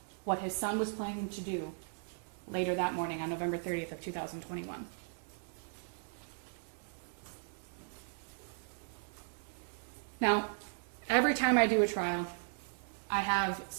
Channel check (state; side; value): silent; left; 53 dB below the other